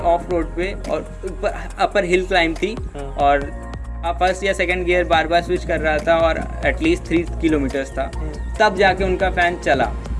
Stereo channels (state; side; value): identical; both; correlation 1.00